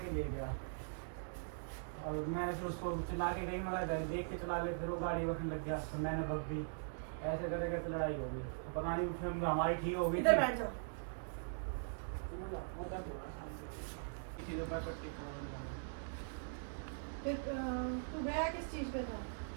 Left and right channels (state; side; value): silent; left; digital silence